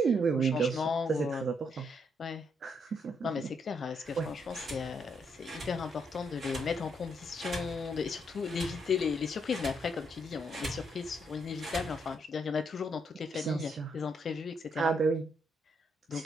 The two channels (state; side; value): normal; both; correlation 0.75